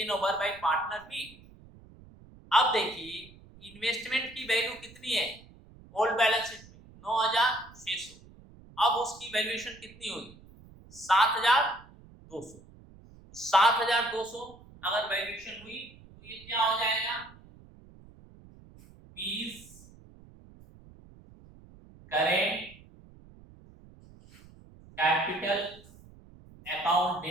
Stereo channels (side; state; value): right; noise; rumble, 22 dB below the sound